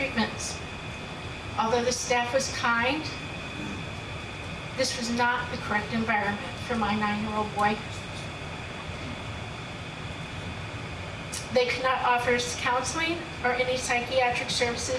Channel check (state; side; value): identical; both; correlation 1.00